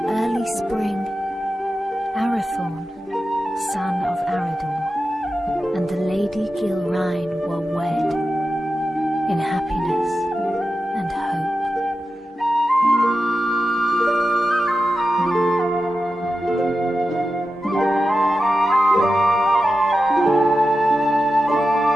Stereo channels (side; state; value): both; normal; correlation 0.91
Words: early spring, Arathorn, son of Arador, and the Lady Gilrain were wed in happiness and hope.